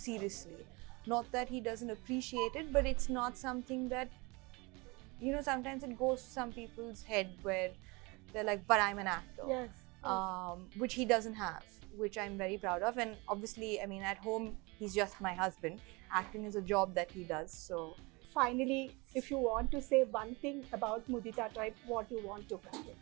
Not that he doesn't appreciate it, but it's not something that, you know, sometimes it goes to some people's head where they're like, but I'm an actor. Yes. Which he doesn't have, which I'm very proud of. And obviously, I mean, at home, he's just my husband. Acting is a job that he does. So Finally, if you want to say one thing about Mudita Tribe, what you want to convey?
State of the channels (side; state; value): left; quieter; 26.3 dB